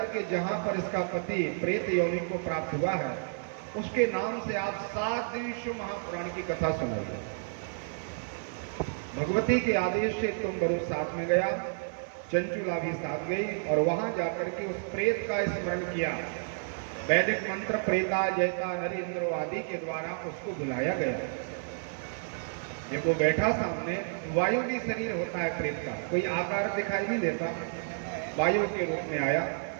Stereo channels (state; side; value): silent; left; 57 dB below the other